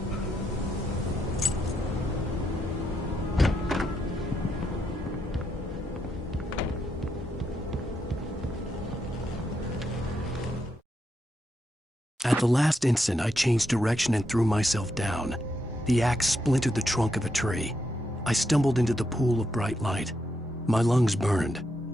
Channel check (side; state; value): both; normal; correlation 0.81